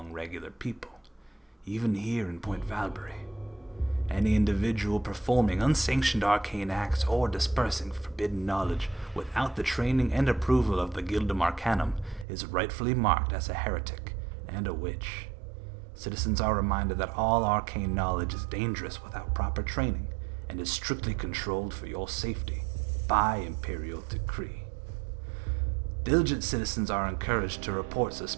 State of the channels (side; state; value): left; drops out; at 12.2 s